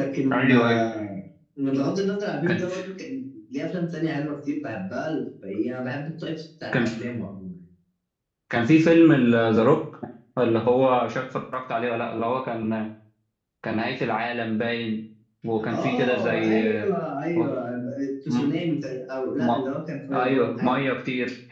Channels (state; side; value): identical; both; correlation 1.00